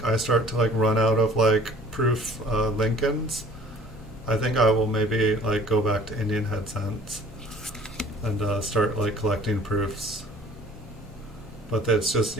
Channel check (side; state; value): both; normal; correlation 0.51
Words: start to like run out of like proof Lincolns, I think I will maybe like go back to Indian head cents and start like collecting proofs. But it's just,